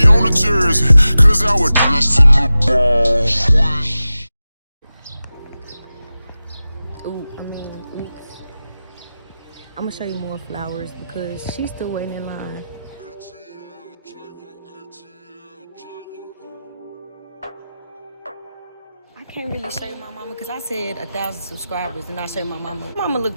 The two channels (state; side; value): inverted; both; correlation -0.95